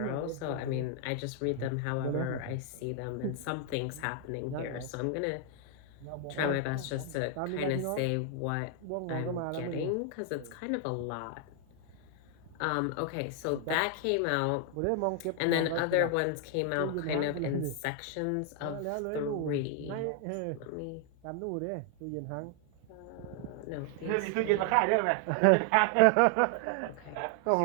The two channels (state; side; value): different; both; correlation 0.00